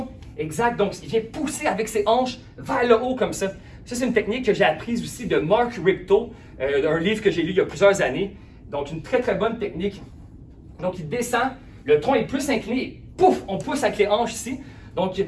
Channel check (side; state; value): both; identical; correlation 1.00